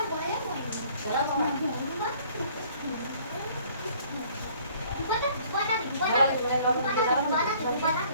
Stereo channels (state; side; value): inverted; both; correlation -0.57